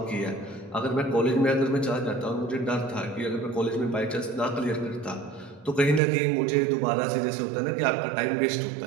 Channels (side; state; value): left; drops out; at 6.0 s